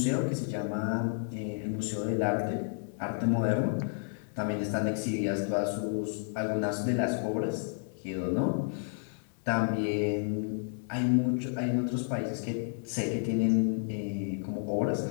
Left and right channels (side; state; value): right; silent; digital silence